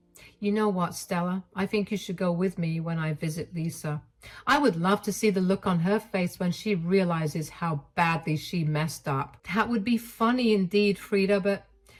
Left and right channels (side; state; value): both; identical; correlation 1.00